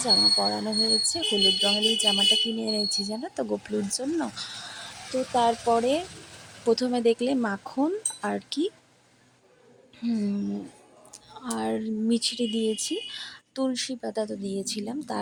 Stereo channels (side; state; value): both; identical; correlation 1.00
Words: জামা পরানো হয়েছে। হলুদ রঙের এই জামাটা কিনে এনেছি জানো তো গোপুলুর জন্য। তো তারপরে প্রথমে দেখলে মাখন আর কি আর মিছরি দিয়েছি, তুলসী পাতা তো দিয়েছিলাম।